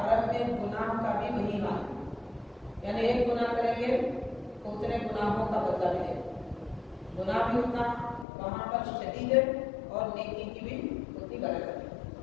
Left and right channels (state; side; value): drops out; right; at 8.2 s